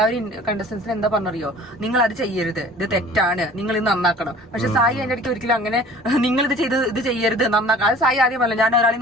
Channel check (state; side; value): normal; both; correlation 0.46